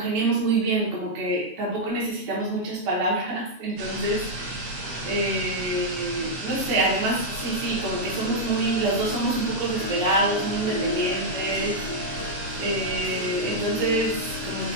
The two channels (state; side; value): late; left; 8.2 ms